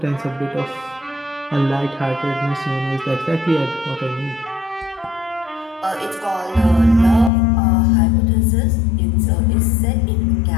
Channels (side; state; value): right; drops out; at 7.3 s